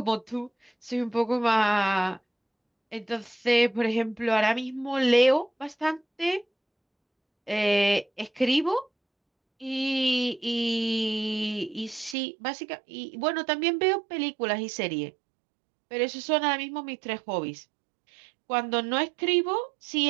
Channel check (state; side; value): drops out; left; at 12.2 s